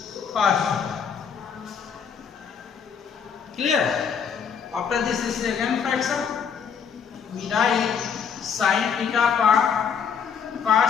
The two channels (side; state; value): right; quieter; 6.9 dB